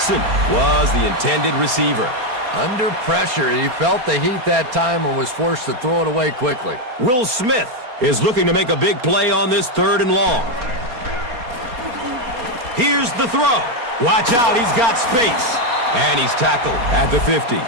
was the intended receiver. Under pressure, he felt the heat that time and was forced to throw it away quickly. Will Smith is looking to make a big play on this 3rd and long. Here's the throw. Watch out, he's got space. And he's tackled at the 50.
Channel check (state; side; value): late; left; 4.3 ms